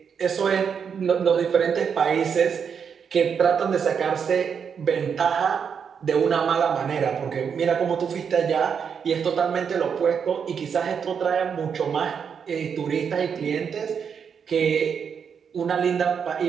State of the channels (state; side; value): quieter; left; 6.9 dB